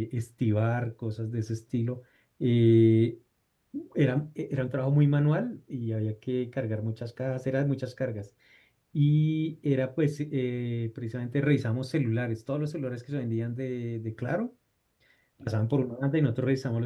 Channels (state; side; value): identical; both; correlation 1.00